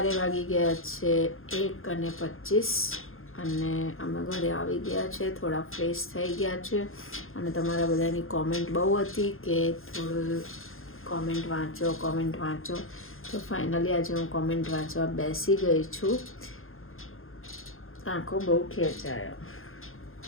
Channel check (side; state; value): right; late; 0.60 ms